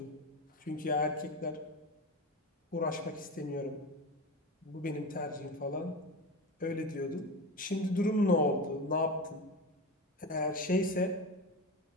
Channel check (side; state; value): both; normal; correlation 0.25